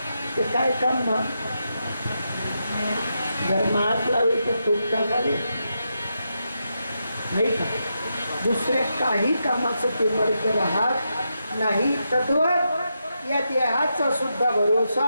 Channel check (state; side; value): inverted; both; correlation -0.85